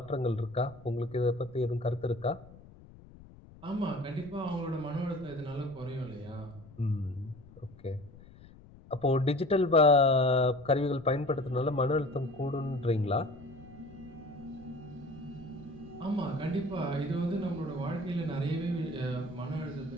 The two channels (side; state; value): left; noise; rumble, 21 dB below the sound